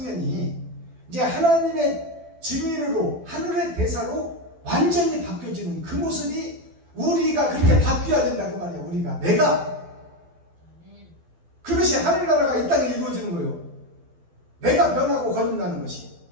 이제 하나님의 증인으로 하늘의 대사로 완전히 바뀌어지는 그 모습이 우리가 그렇게 바뀌어야 된다 그 말이에요. 우리가 내가 그것이 하늘나라가 이 땅에 이루어지는 거예요. 내가 변하고 거듭나는 것이.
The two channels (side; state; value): left; late; 12 ms